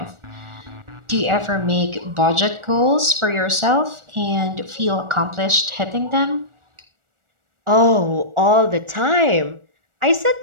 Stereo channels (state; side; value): late; left; 1.4 ms